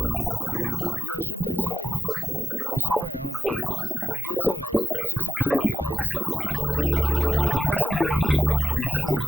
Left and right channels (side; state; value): both; normal; correlation 0.91